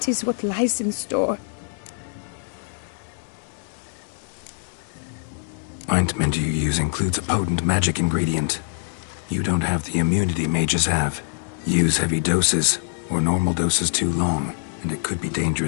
is what lies in store. Ointment you use includes a potent magic ingredient. You don't have the immunity mages have. Use heavy doses, or normal doses too long, and it could be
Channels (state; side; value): silent; right; digital silence